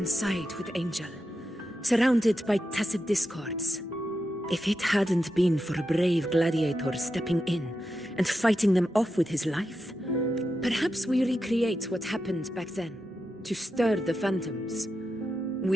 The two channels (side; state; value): both; normal; correlation 0.88